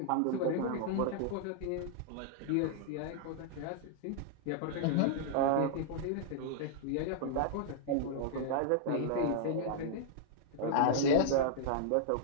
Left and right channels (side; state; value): both; different; correlation -0.01